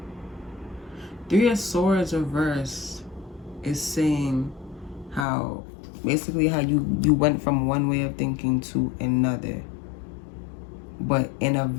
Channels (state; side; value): drops out; right; at 5.2 s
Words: Three of Swords reverse is saying how basically how you went from one way of thinking to another, but in a